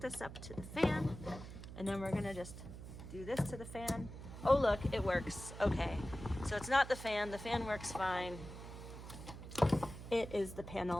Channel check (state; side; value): noise; right; hum, 11 dB below the sound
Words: this up to the fan, and then we're gonna just do this to the fan. Oh look, it works. Okay, so it's not the fan works fine. It is the